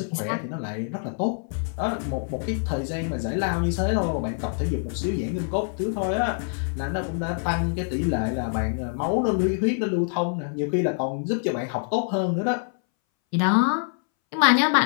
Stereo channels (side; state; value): right; silent; 61 dB below the other